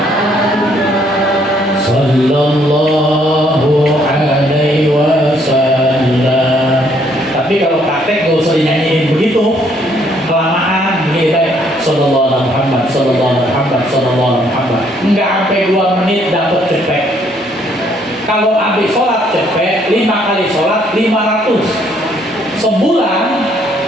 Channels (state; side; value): normal; both; correlation 0.67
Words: sallallahu alaihi wasallam. Tapi kalau praktek gak usah dinyanyiin begitu, kelamaan begini baik. Sallallahu alaihi Muhammad, sallallahu alaihi Muhammad, sallallahu alaihi Muhammad. Enggak sampai 2 menit dapat cepet. Kalau habis sholat cepet, 5 kali sholat 500. Sebulan